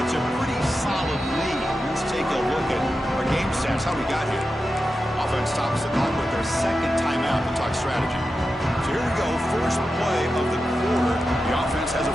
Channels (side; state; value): both; normal; correlation 0.90